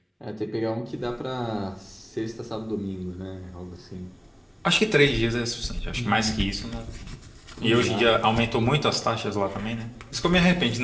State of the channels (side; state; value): both; identical; correlation 1.00